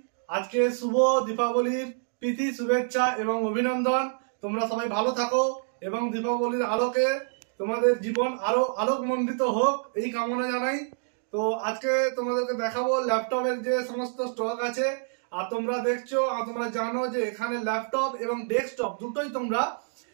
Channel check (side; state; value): left; silent; digital silence